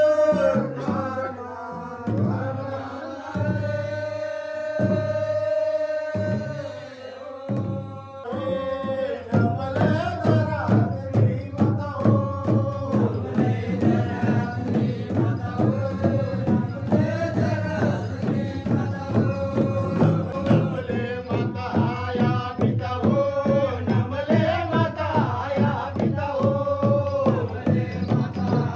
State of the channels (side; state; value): both; identical; correlation 1.00